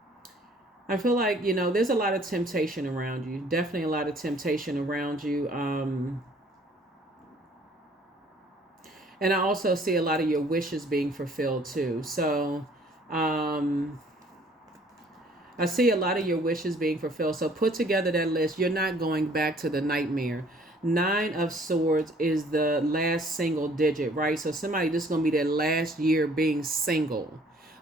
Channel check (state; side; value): normal; both; correlation 0.58